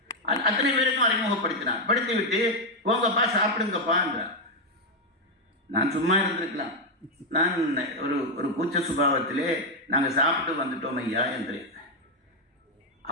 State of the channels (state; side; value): normal; both; correlation 0.03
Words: அத்தனை பேருக்கும் அறிமுகப்படுத்தினார். படித்துவிட்டு போங்கப்பா சாப்பிடுங்கப்பா என்றார். நான் சும்மா இருந்திருக்கலாம். நான் ஒரு கூச்ச சுபாவத்திலே நாங்கள் சாப்பிட்டு வந்துட்டோம் ஐயா என்றேன்.